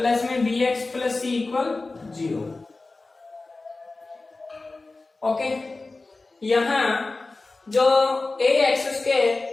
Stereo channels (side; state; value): right; quieter; 3.4 dB